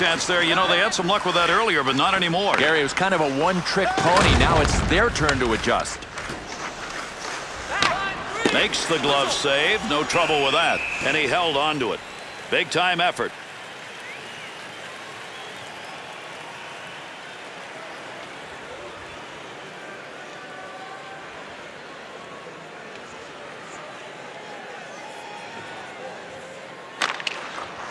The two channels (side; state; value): both; identical; correlation 1.00